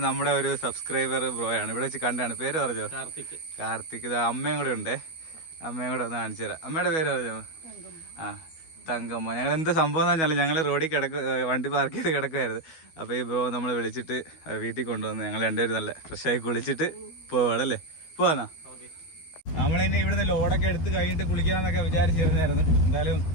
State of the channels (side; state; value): right; late; 12 ms